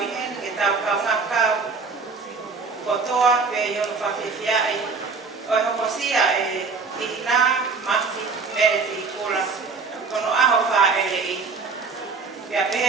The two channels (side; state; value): left; quieter; 4.6 dB